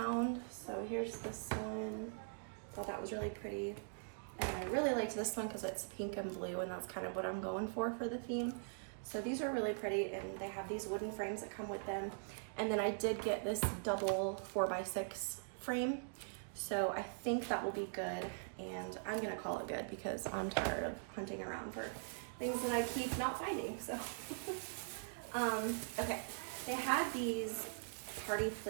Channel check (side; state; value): left; silent; digital silence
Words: So here's this one. Thought that was really pretty. And I really liked this one because it's pink and blue, and that's kind of what I'm going for the theme. So these are really pretty, and they have these wooden frames that come with them. And then I did get this double 4x6 frame. So I think that will be good, and I'm gonna call it good because I'm tired of hunting around for things that I keep not finding, so. Okay, they had these party